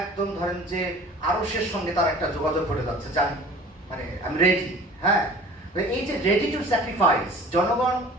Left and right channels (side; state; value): both; normal; correlation 0.44